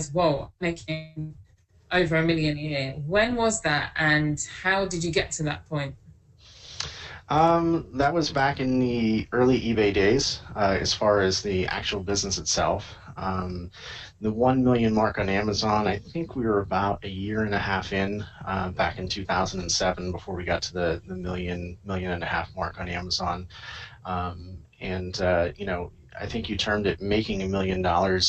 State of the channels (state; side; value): identical; both; correlation 1.00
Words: whoa, I'm making over $1 million a year. When was that, and how did you get to that point? That was back in the early eBay days, as far as the actual business itself. The 1 million mark on Amazon, I think we were about a year and a half in, back in 2007, before we got to the million and a half mark on Amazon. I think you termed it making $1 million.